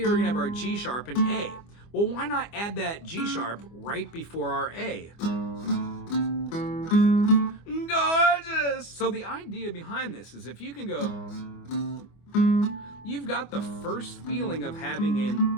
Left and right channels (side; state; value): right; late; 25 ms